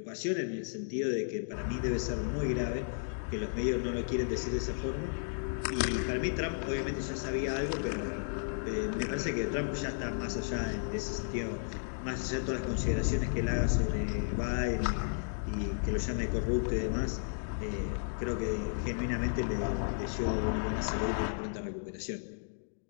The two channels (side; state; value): right; silent; digital silence